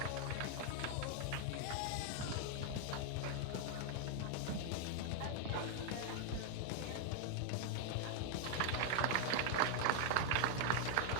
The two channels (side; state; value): both; different; correlation 0.00